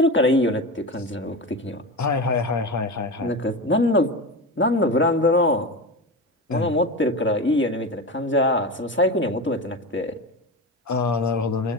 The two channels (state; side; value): normal; both; correlation 0.24